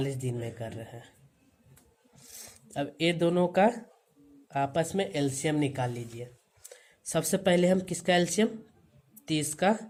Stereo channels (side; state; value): both; identical; correlation 1.00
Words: दिन में कर रहे हैं। अब ये दोनों का आपस में एलसीएम निकाल लीजिए। सबसे पहले हम किसका एलसीएम? 30 का